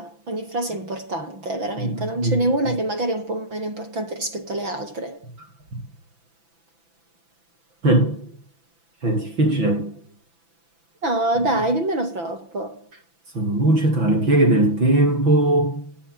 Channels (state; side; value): late; left; 6.0 ms